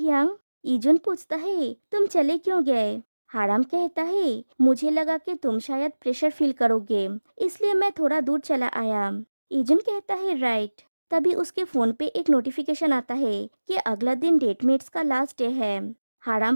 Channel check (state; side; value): inverted; both; correlation -1.00